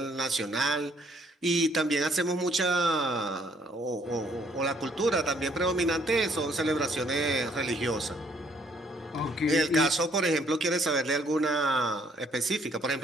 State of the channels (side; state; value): both; normal; correlation 0.66